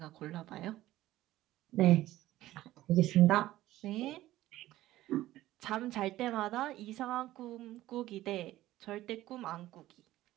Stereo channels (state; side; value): quieter; left; 15.4 dB